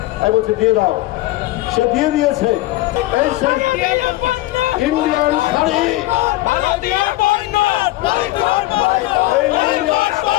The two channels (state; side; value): quieter; right; 17.6 dB